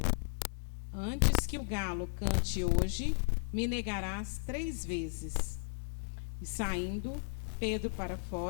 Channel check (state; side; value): silent; right; digital silence